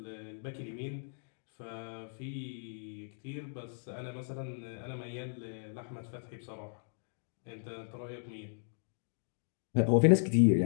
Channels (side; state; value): right; silent; digital silence